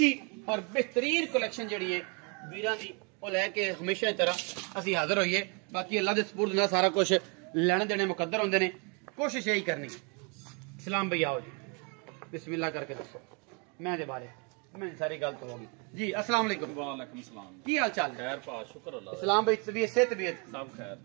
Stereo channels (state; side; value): quieter; left; 34.1 dB